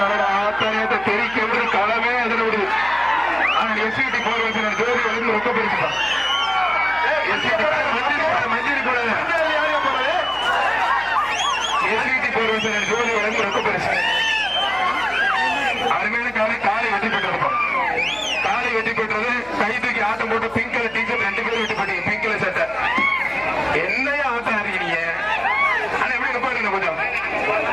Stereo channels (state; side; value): noise; left; hum, 23 dB below the sound